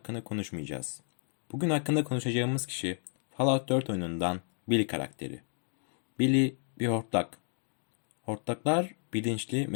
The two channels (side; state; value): right; silent; 56 dB below the other